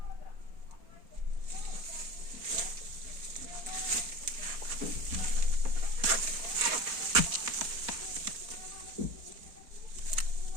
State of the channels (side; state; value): left; late; 4.3 ms